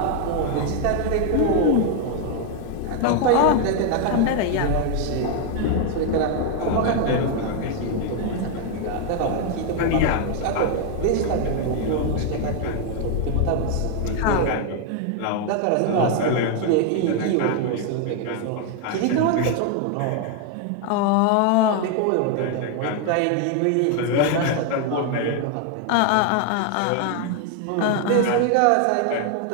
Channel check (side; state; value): both; different; correlation 0.01